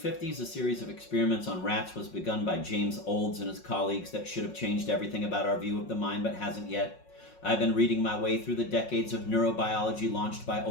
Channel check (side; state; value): right; late; 5.5 ms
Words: a series of experiments on rats was begun by James Olds and his colleagues that should have changed everything about our view of the mind, but hasn't yet. I've been reading my way through the decades of neurobiology launched by